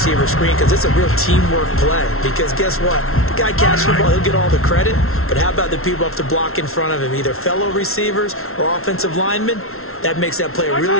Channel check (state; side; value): late; right; 0.62 ms